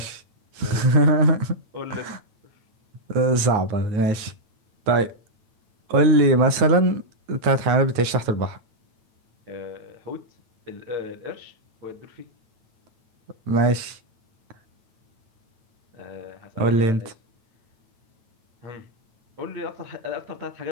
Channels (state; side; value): late; left; 9.0 ms